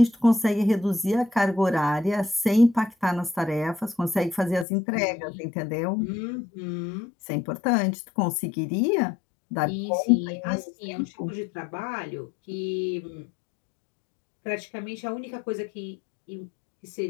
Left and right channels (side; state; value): right; drops out; at 4.7 s